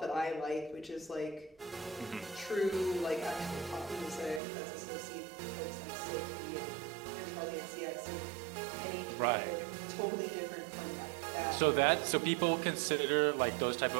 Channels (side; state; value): left; drops out; at 4.4 s